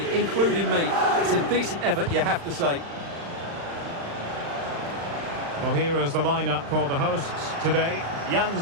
including me. It's a decent effort, you have to say. Well, here is the lineup for the hosts today. Jan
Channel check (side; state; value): left; late; 35 ms